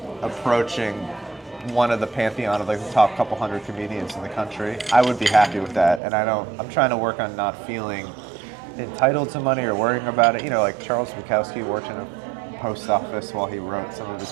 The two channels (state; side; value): drops out; left; at 6.0 s